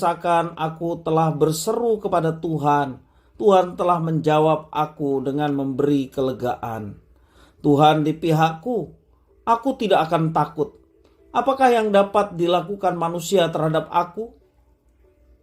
aku telah berseru kepada Tuhan. Tuhan telah menjawab aku dengan memberi kelegaan. Tuhan di pihakku, aku tidak akan takut. Apakah yang dapat dilakukan manusia terhadap aku?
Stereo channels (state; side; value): identical; both; correlation 1.00